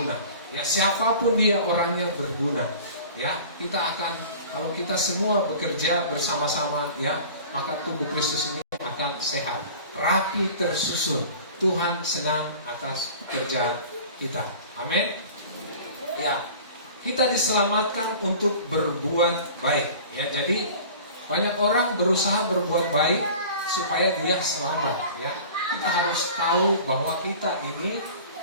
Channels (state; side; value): inverted; both; correlation -0.42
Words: Ya, siapapun dia orangnya berguna. Ya, kita akan, kalau kita semua bekerja bersama-sama, ya, maka tubuh Kristus ini akan sehat, rapi, tersusun. Tuhan senang atas kerja kita. Amin. Ya, kita diselamatkan untuk berbuat baik. Ya, jadi banyak orang berusaha berbuat baik supaya dia selamat. Ya, kita harus tahu bahwa kita ini,